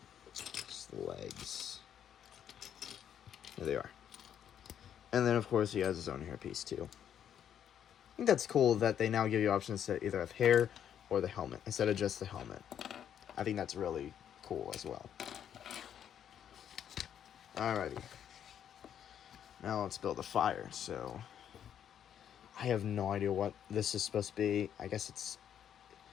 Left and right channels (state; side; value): quieter; right; 9.4 dB